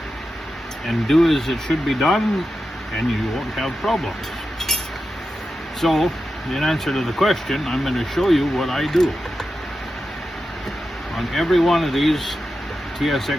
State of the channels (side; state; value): both; normal; correlation 0.91